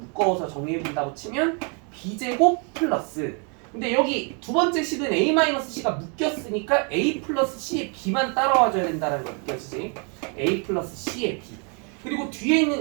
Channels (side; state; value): left; quieter; 36.8 dB